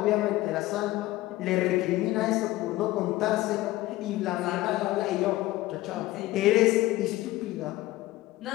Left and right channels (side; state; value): right; quieter; 17.3 dB